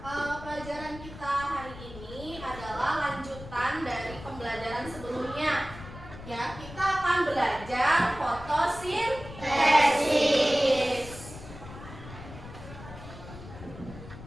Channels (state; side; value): noise; left; rumble, 14 dB below the sound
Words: pelajaran kita hari ini adalah lanjutan dari pembelajaran sebelumnya. Ya, kita akan belajar fotosintesis.